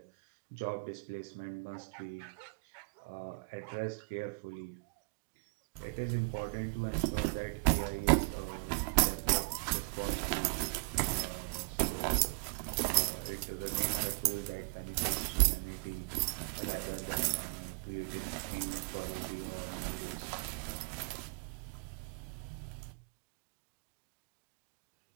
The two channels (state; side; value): quieter; left; 38.8 dB